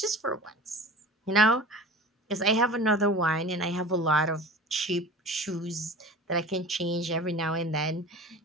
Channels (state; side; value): normal; both; correlation 0.39